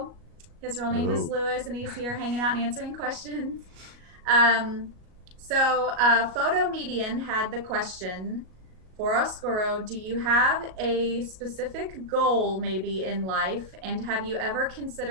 His real name is Louis, and he's here hanging out and answering questions. Photo Median had the question for Oscuro: do you have a specific goal maybe in life, and have you ever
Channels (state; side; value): late; left; 37 ms